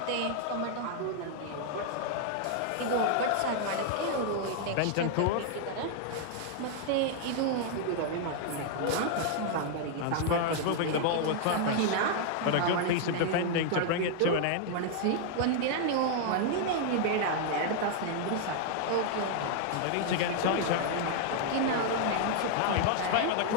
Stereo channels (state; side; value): different; both; correlation 0.00